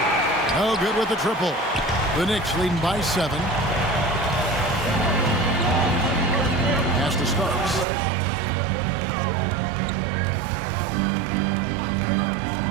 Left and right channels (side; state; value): left; drops out; at 7.9 s